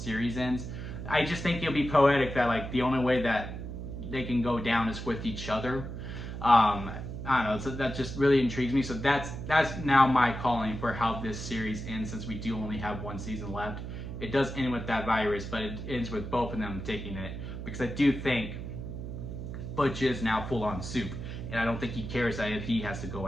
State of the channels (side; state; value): right; noise; hum, 7 dB below the sound